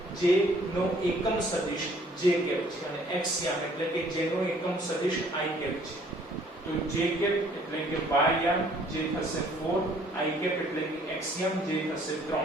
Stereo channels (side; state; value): both; normal; correlation 0.59